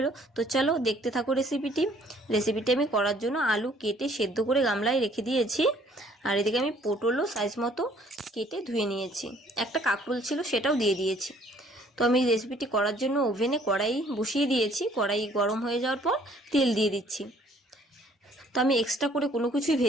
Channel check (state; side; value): normal; both; correlation 0.60